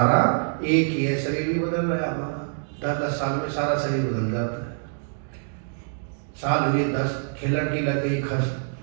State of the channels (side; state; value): left; silent; 62 dB below the other